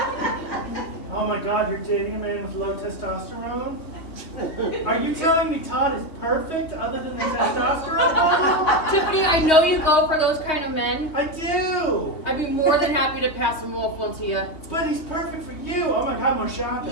Oh my God, you're dating a man with low testosterone? Are you telling me Todd is perfect other than the testosterone level? Tiffany, I know you go for those kind of men. I do! I'd be more than happy to pass him off one to you. But he's perfect for you! Oh my God, more shopping.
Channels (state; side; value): late; right; 3.3 ms